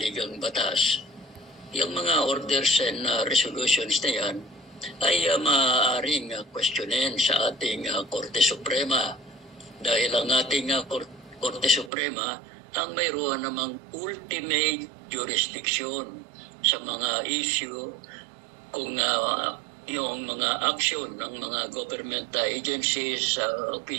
batas, yung mga orders and resolutions na yan ay maaaring questionin sa ating Korte Suprema. Dahil ang ating Korte Suprema ang mayroon namang ultimate jurisdiction sa mga issue kung yung mga action ng mga government agencies,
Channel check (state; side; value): drops out; left; at 11.9 s